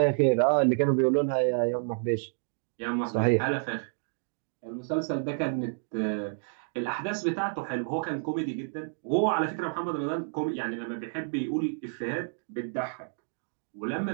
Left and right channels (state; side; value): silent; left; digital silence